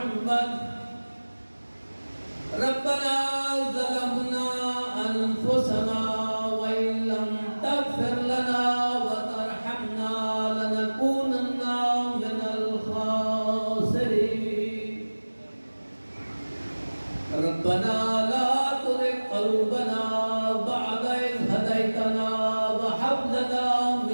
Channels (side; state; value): both; inverted; correlation -1.00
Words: रब्बना ज़लमना अनफुसना व इन लम तग़फ़िर लना व तरहमना लनकूनन्ना मिनल ख़ासिरीन। रब्बना ला तुज़िग़ क़ुलूबना बअद इज़ हदैतना व हब लना